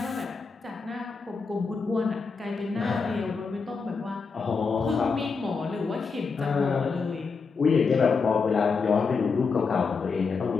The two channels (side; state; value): right; quieter; 4.9 dB